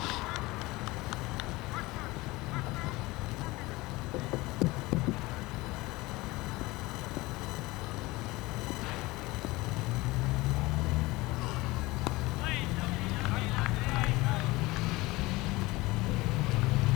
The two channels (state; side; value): quieter; right; 21.2 dB